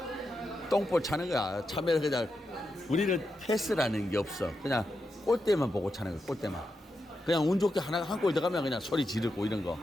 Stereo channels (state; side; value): normal; both; correlation 0.87